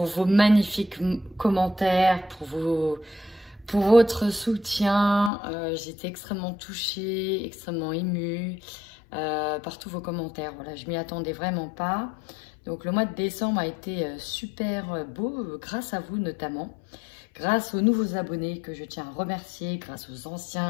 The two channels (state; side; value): drops out; right; at 5.3 s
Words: vos magnifiques commentaires, pour votre soutien. J'étais extrêmement touchée, extrêmement émue par tous vos commentaires. Voilà, je m'y attendais vraiment pas. Donc le mois de décembre a été super beau, grâce à vous notamment. Grâce aux nouveaux abonnés que je tiens à remercier, grâce aux